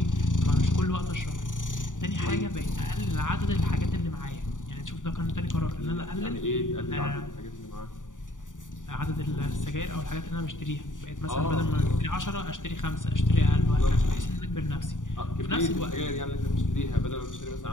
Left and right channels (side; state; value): right; late; 0.87 ms